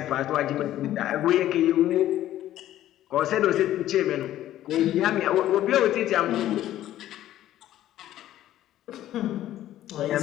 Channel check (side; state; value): right; quieter; 13.1 dB